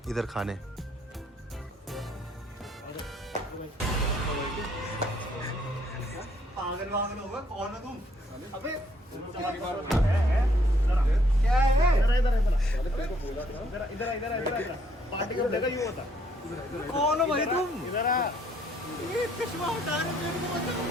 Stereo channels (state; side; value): normal; both; correlation 0.67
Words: इधर खाने पागल होगा कौन हो तुम अबे क्या है इधर पार्टी का जगह यूं होता कौन हो भाई तुम इधर आ ये कश्मा उठा रहे मेरे को बचाओ।